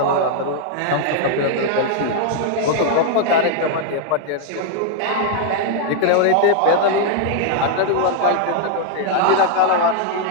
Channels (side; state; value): both; different; correlation -0.01